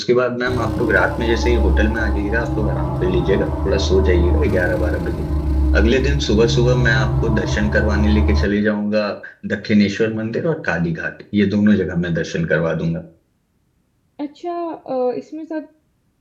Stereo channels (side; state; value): both; identical; correlation 1.00